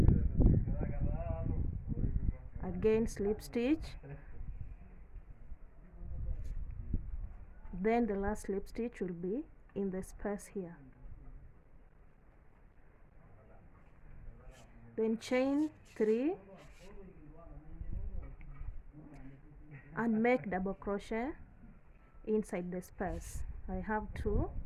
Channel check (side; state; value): both; identical; correlation 1.00